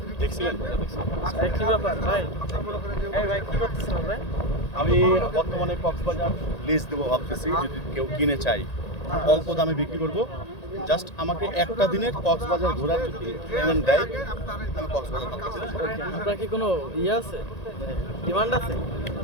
থ্রি পিস কি ব্যাপার ভাই? এই ভাই কি করতেছেন আপনি? আমি বর্তমানে কক্সবাজার লিজ দেবো ভাবতেছি, যদি কেউ কিনে চাই অল্প দামে বিক্রি করব। জাস্ট আমাকে একটা দিনের কক্সবাজার ঘোরার যদি পেমেন্ট দেয়, আমি কক্সবাজার ভাবতেছি। আপনার কি কোনো ইয়ে আছে, ডিমান্ড আছে?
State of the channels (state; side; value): late; right; 1.8 ms